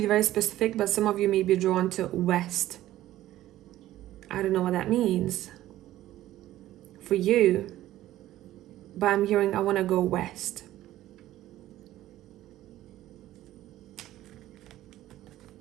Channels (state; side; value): quieter; left; 14.4 dB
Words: very specific, but some of you may be drawn to west. I don't know what that means. for you, but I'm hearing I want to go west.